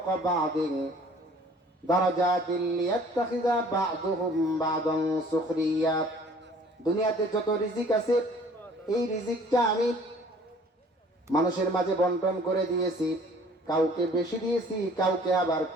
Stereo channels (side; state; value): both; normal; correlation 0.53